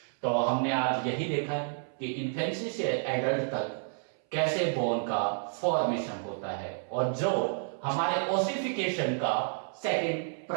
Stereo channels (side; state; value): left; silent; 58 dB below the other